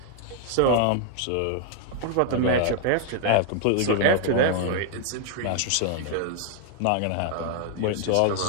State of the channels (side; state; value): both; different; correlation 0.00